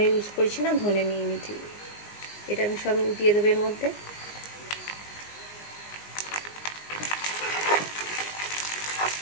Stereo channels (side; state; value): right; late; 19 ms